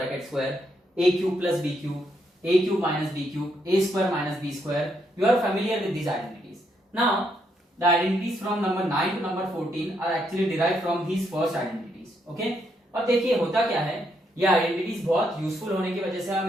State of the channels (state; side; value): normal; both; correlation 0.76